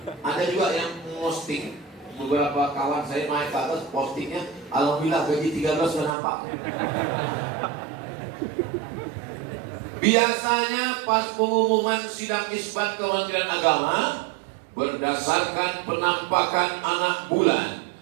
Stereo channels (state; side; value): drops out; left; at 6.1 s